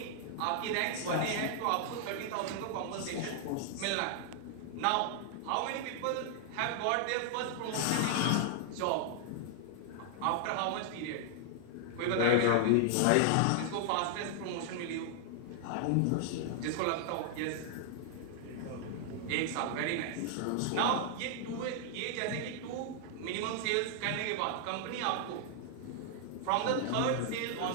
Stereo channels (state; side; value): different; both; correlation 0.00